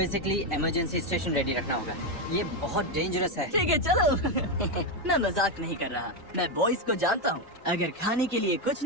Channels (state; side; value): normal; both; correlation 0.07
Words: इमरजेंसी स्टेशन रेडी रखना होगा। ये बहुत डेंजरस है। ठीक है चलो। मैं मजाक नहीं कर रहा, मैं बॉयज को जानता हूँ। अगर खाने के लिए कुछ